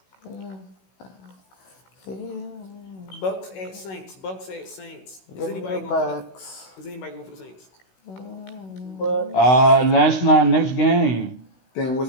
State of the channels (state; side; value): late; right; 16 ms